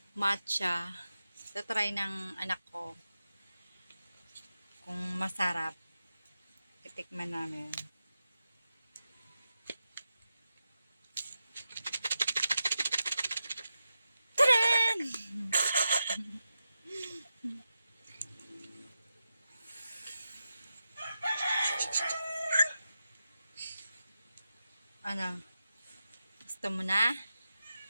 matcha. Tatry ng anak ko. Kung masarap, titikman namin. Ano? Gusto mo na?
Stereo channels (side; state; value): both; inverted; correlation -0.89